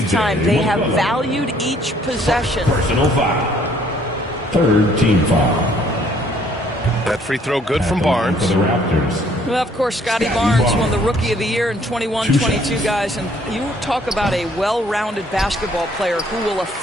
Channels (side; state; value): both; normal; correlation 0.63